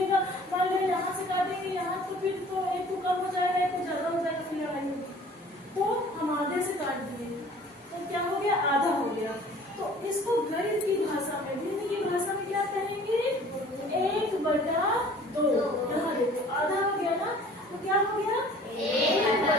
मान लो यहाँ से काटेंगे यहाँ, तो फिर तो एक को कम हो जाएगा एक को ज्यादा हो जाएगा, फिर लड़ाई होगी। तो हम आधे से काट दिए तो क्या हो गया, आधा हो गया। तो इसको गणित की भाषा में, गणित की भाषा में क्या कहेंगे, 1/2। यहाँ देखो आधा हो गया ना, तो क्या हो गया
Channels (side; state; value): both; normal; correlation 0.49